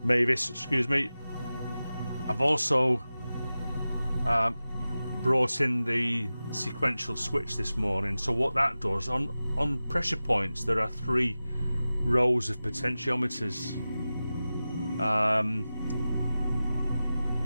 Mavis, excuse me. I've also brought in the sequential switch this morning. So what that does, on pressure points, there are 3 rows of potentiometers.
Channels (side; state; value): both; inverted; correlation -0.95